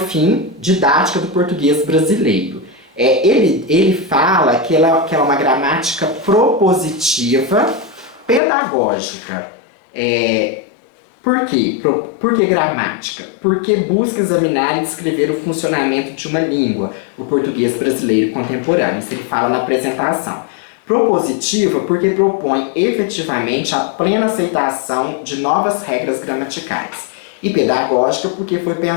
didática do português brasileiro. Ele fala que ela é uma gramática propositiva pedagógica. Por quê? Por que gramática? Porque busca examinar e descrever o funcionamento de uma língua, o português brasileiro contemporâneo. Isso ele fala na apresentação. Propositiva porque propõe efetivamente a plena aceitação de novas regras gramaticais. E pedagógica porque foi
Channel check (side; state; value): right; drops out; at 8.4 s